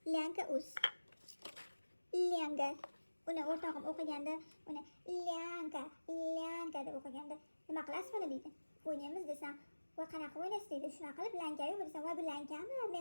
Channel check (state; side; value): inverted; both; correlation -1.00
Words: lanka uz. Langa. Uni o'rtog'im o'qiganda, uni lanka deb o'qiganda, nima qilasiz buni deydi. O'ynaymiz desam, voy qanaqa o'ynaysiz deydi. Shunaqa qilib lanka-yu desam, voy bu lankami?